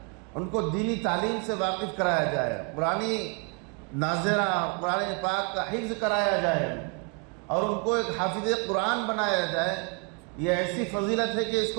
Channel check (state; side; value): quieter; left; 36.0 dB